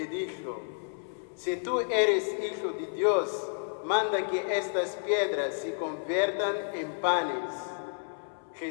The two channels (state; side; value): silent; right; 57 dB below the other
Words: dijo: si tú eres hijo de Dios, manda que estas piedras se conviertan en panes.